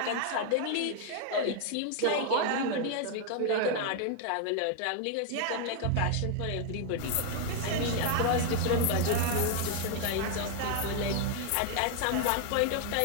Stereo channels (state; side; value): different; both; correlation 0.00